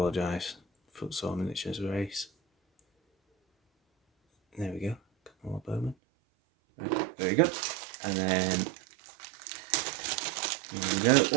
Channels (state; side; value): drops out; left; at 6.0 s